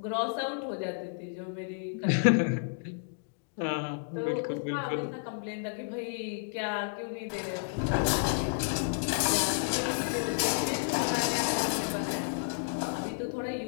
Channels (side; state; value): right; silent; digital silence